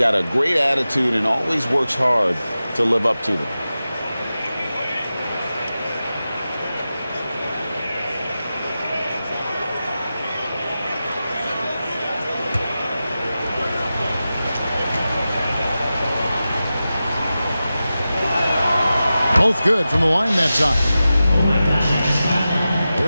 a great attitude and always works hard to live up to them. Both good from the line that time.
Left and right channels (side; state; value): both; inverted; correlation -0.93